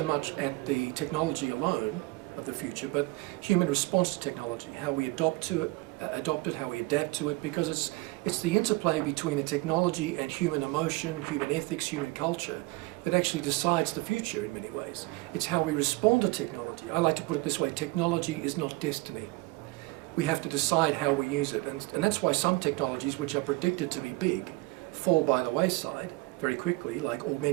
much at the technology alone of the future, but human response to technology, how we adopt it, how we adapt to it, because it's the interplay between the technology and human emotion, human ethics, human culture that actually decides the future in many ways. It's how we respond to technology. I like to put it this way: technology is not destiny. We have to decide how we use it, and that's why some technologies which are predicted to be big fall by the wayside very quickly, like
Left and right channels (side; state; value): left; quieter; 22.2 dB